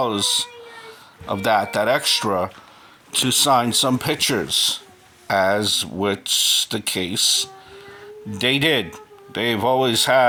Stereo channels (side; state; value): both; identical; correlation 1.00